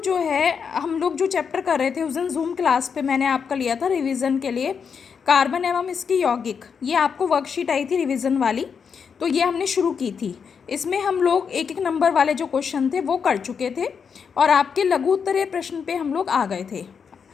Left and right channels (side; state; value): right; quieter; 6.4 dB